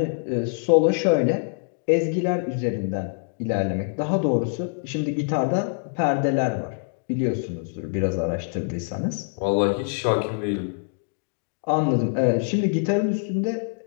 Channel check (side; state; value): right; silent; digital silence